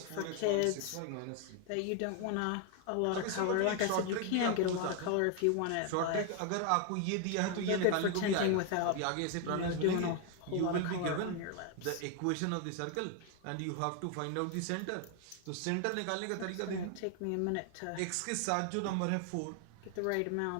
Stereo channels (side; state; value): both; different; correlation 0.00